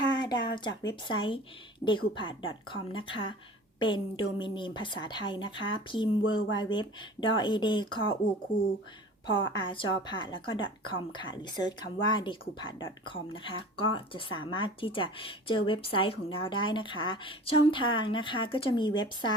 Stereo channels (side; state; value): both; normal; correlation 0.41